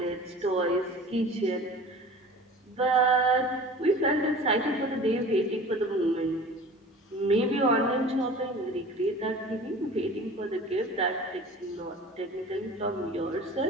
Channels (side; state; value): both; normal; correlation 0.41